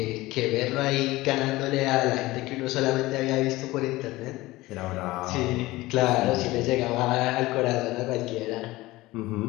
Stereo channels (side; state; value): right; quieter; 19.0 dB